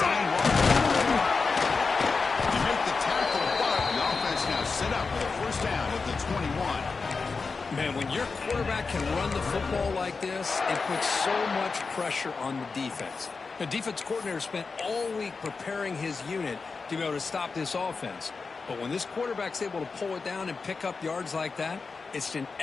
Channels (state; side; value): quieter; right; 4.5 dB